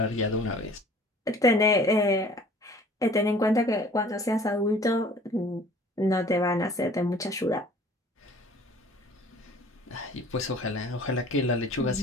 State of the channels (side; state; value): both; normal; correlation 0.50